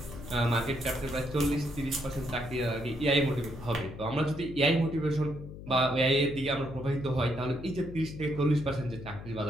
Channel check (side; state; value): left; noise; hum, 12 dB below the sound